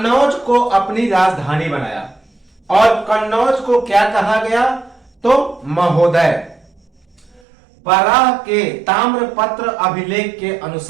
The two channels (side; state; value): left; drops out; at 7.4 s